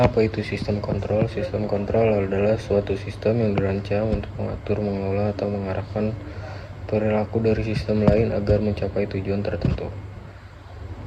apa itu sistem kontrol? Sistem kontrol adalah suatu sistem yang dirancang untuk mengatur, mengelola, atau mengarahkan perilaku dari sistem lain agar mencapai tujuan tertentu.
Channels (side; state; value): both; identical; correlation 1.00